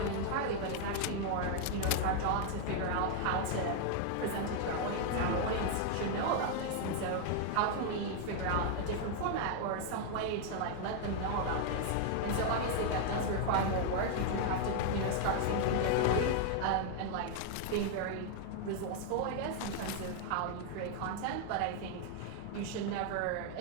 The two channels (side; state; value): both; different; correlation 0.00